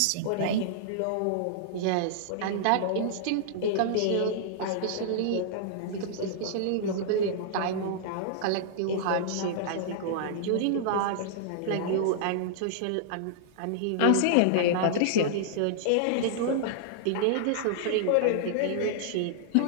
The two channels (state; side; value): different; both; correlation -0.01